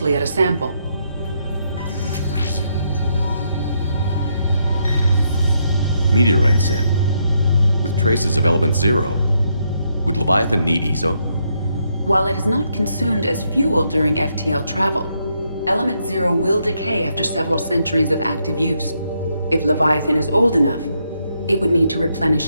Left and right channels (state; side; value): inverted; both; correlation -0.77